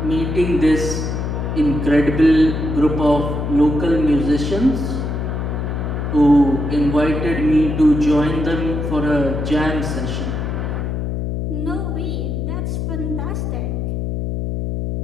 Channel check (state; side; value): noise; left; hum, 2 dB below the sound